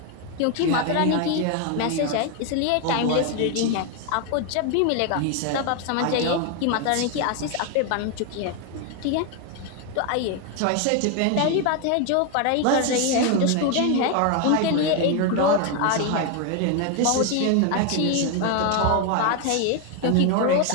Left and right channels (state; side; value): different; both; correlation 0.01